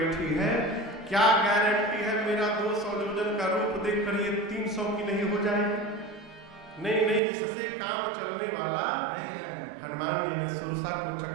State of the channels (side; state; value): left; drops out; at 7.2 s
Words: है, क्या गारंटी है मेरा 200 जोजन का रूप देखकर ये 300 की नहीं हो जाएगी? नहीं नहीं, इससे काम चलने वाला नहीं है। हनुमान जी ने सुरसा को